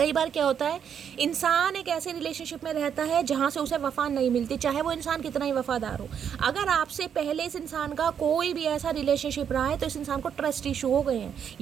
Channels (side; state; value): left; quieter; 8.1 dB